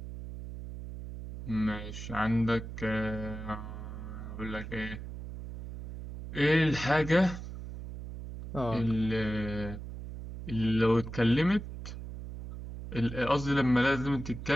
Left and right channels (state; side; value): noise; right; hum, 10 dB below the sound